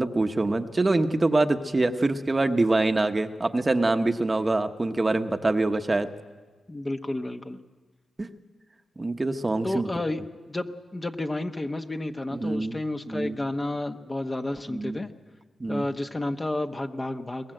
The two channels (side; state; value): both; normal; correlation 0.97